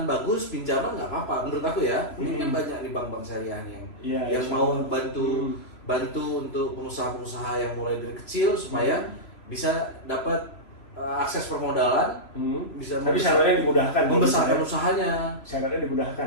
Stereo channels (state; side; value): late; right; 3.0 ms